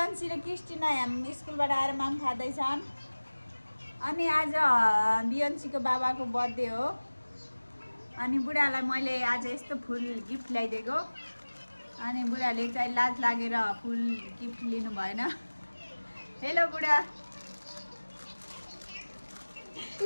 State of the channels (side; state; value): both; inverted; correlation -1.00